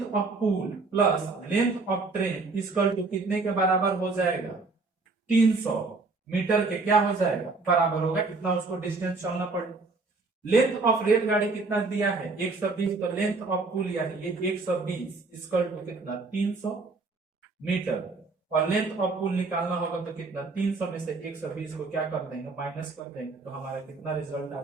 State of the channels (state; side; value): quieter; left; 3.8 dB